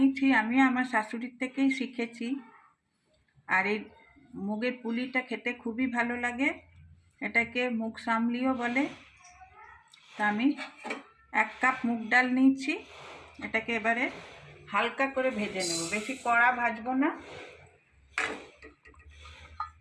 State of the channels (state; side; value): identical; both; correlation 1.00